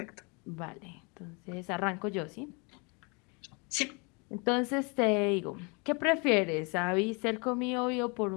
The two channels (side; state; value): right; quieter; 31.7 dB